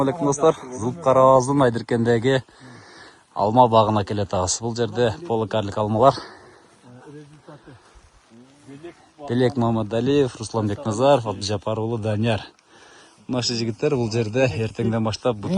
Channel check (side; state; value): both; identical; correlation 1.00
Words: alaikum dostlar. Зұлпқарағаздың Айдыркендегі алма бағына келетағыз. Бұл жерде поликарлік алмалар. Белек Мамадалиев, Русланбек Назаров, Абдыжапарұлы Данияр. Наши жігіттер бұл жерде ертеңден баштап